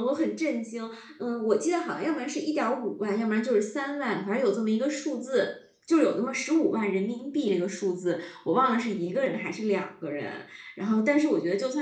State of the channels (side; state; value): both; identical; correlation 1.00